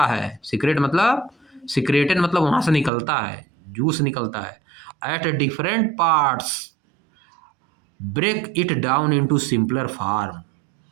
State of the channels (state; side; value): drops out; left; at 2.9 s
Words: है, सीक्रेट मतलब सीक्रेटेड मतलब वहाँ से निकलता है, जूस निकलता है। At different parts break it down into simpler form,